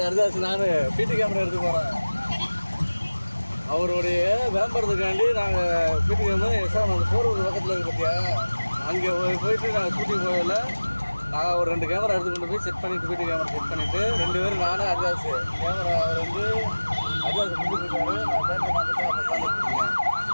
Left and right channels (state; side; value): inverted; both; correlation -1.00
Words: நான் பிடி கேமரா எடுத்து போகிறேன். அவருடைய விளம்பரத்துக்காண்டி நாங்கள் பிடி கேமரா சார் நாங்கள் போகிறது பக்கத்தில் இருக்கு பார்த்தியா, அங்கே போயிட்டு நாங்கள் ஷூட்டிங் போகல. நான் ஒரு 2 கேமரா எடுத்து கொண்டு போய் செட் பண்ணிவிட்டு பிடி கேமரா செட் பண்ணிவிட்டு 2 பேரும் நானும் ஹரிதாஸ் கேமரா அவர் வந்து ஹரிதாஸ் முடிச்சுருக்காரு. நான் பேச பார்த்துட்டு அப்போ உட்காந்துருக்கேன்.